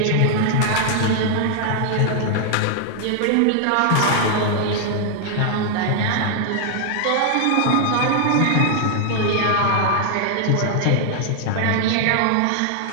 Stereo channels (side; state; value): both; different; correlation 0.00